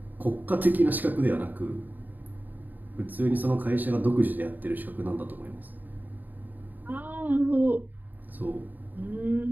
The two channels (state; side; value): late; left; 0.086 ms